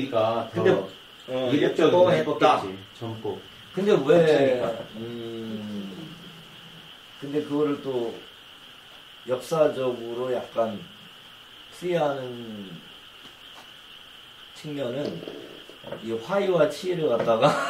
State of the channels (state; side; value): identical; both; correlation 1.00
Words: 근데 더 이국적으로 예뻤다. 예뻤겠지. 젊고. 근데 왜 근데 그거를 또 역사적으로 약간 풀이하는 측면은 이 화이와 치를 갖다가